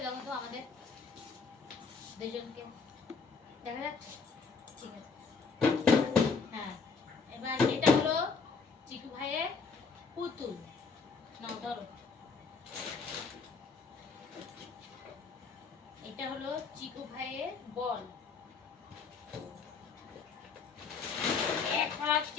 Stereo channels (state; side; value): quieter; right; 5.0 dB